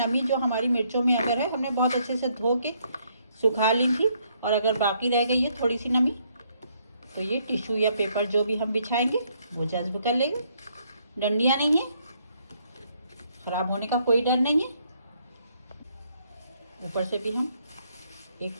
जो हमारी मिर्चों में अगर है, हमने बहुत अच्छे से धो के सुखा ली थी, और अगर बाकी रह गई है थोड़ी सी नमी, तो ये टिश्यू या पेपर जो भी हम बिछाएंगे वो जज्ब कर लेंगे। डंडियाँ नहीं है, ख़राब होने का कोई डर नहीं है। ऊपर से भी हम एक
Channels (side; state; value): both; inverted; correlation -0.70